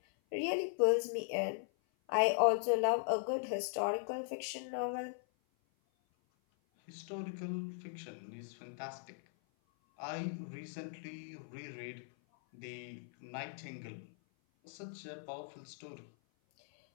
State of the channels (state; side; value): silent; right; 52 dB below the other